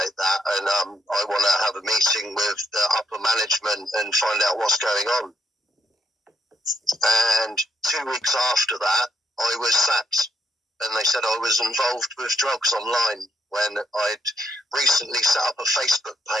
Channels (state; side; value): normal; both; correlation 0.79